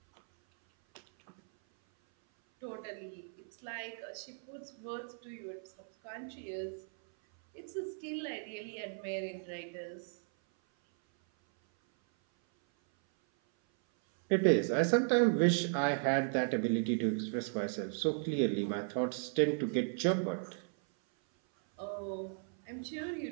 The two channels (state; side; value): silent; left; 54 dB below the other